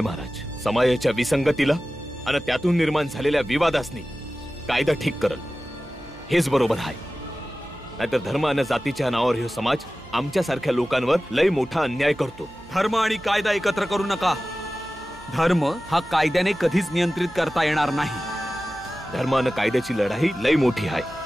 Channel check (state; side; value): noise; right; hum, 23 dB below the sound